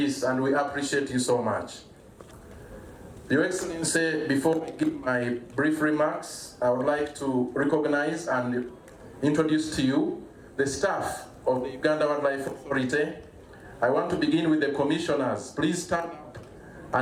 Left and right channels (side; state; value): both; identical; correlation 1.00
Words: and we appreciate you so much. Your Excellency, before I give my brief remarks, I would like to recognize and introduce to you the staff of the Uganda Wildlife Authority. I want to begin with the commissioners. Please stand up